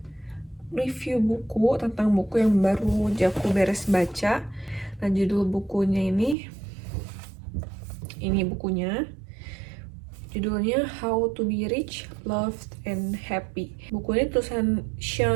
review buku tentang buku yang baru aja aku beres baca. Nah, judul bukunya ini bukunya, judulnya How to Be Rich, Loved, and Happy. Buku ini tulisan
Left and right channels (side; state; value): left; drops out; at 6.4 s